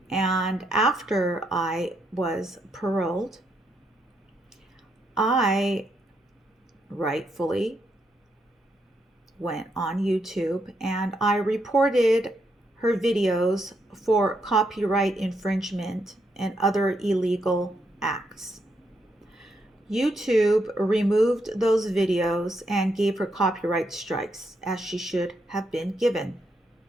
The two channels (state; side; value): normal; both; correlation 0.78